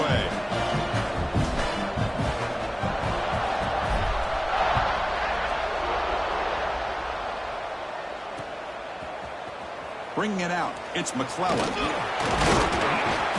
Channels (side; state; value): both; identical; correlation 1.00